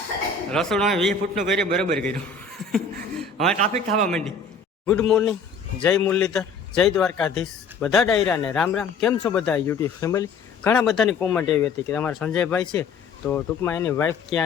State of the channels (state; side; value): quieter; right; 4.7 dB